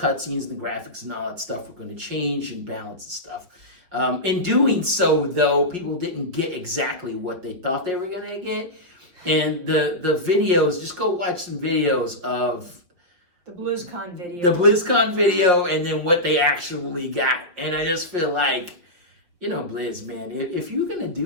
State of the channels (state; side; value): late; left; 5.5 ms